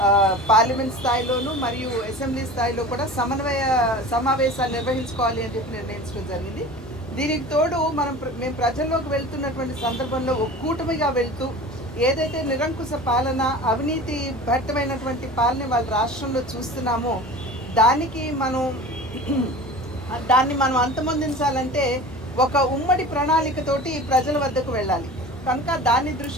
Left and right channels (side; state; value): both; normal; correlation 0.37